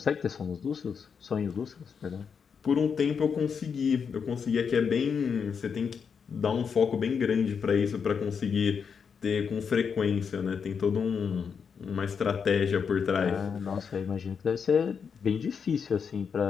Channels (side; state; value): right; quieter; 6.4 dB